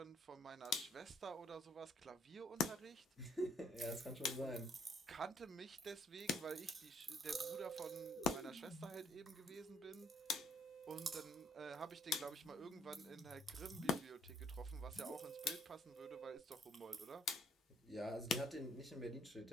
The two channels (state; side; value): normal; both; correlation 0.66